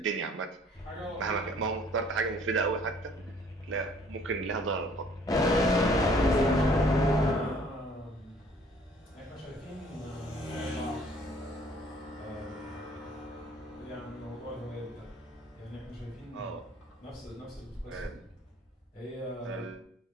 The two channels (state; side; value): normal; both; correlation 0.57